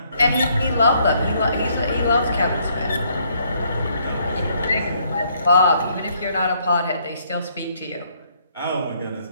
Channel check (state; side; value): inverted; both; correlation -0.68